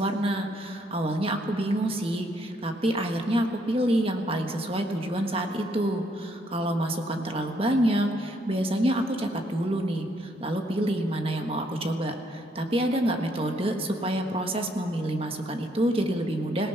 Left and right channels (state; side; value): normal; both; correlation 0.71